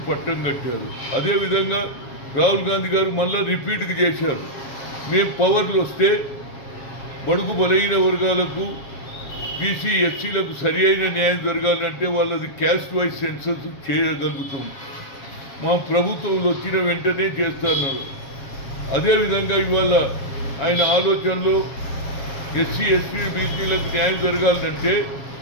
పట్టం కట్టారు. అదేవిధంగా రాహుల్ గాంధీ గారు మళ్ళా రిపీట్కి చేశారు. మేము పవర్లు వస్తే బడుగు బలహీన వర్గాలకు బీసీ ఎస్సీలకు సరి అయిన న్యాయం జరగాలంటే వాళ్ళది క్యాస్ట్ వైజ్ సెన్సస్ చేయగలుగుతాం. మా ప్రభుత్వంలో వచ్చిన వెంటనే చేస్తున్నారు. అదేవిధంగా ఇవాళ ఆయన ఆలోచనలో ఎస్సీ ఎస్టీ బీసీలకు న్యాయం జరగాలంటే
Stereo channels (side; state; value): right; late; 7.4 ms